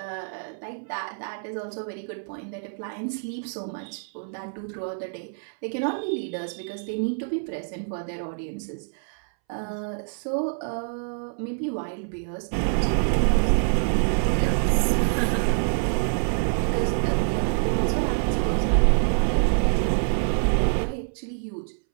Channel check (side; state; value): left; silent; 61 dB below the other